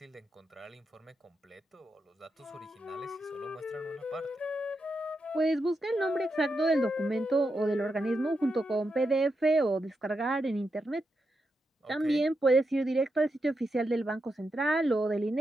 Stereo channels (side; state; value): both; normal; correlation 0.85